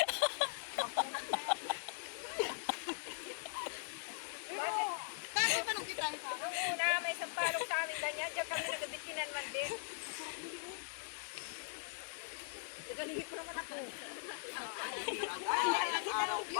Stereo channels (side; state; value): right; silent; digital silence